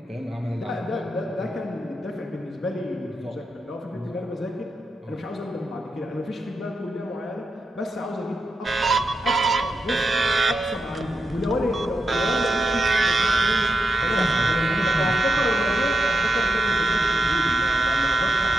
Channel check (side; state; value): both; normal; correlation 0.88